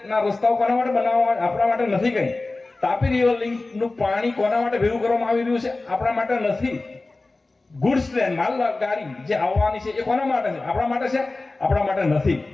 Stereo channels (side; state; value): right; quieter; 3.3 dB